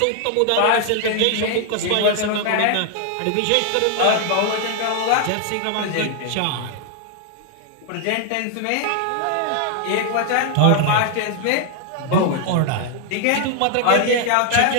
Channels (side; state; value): both; different; correlation 0.00